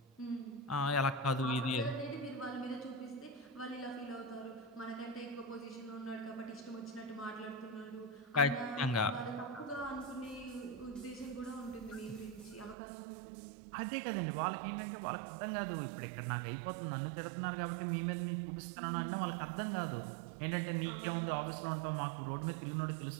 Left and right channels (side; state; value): left; drops out; at 12.8 s